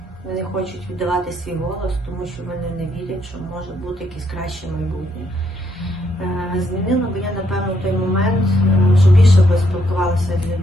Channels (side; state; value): both; normal; correlation 0.74